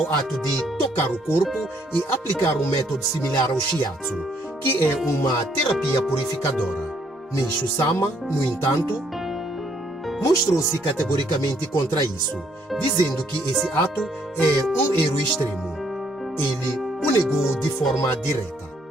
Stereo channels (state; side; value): normal; both; correlation 0.68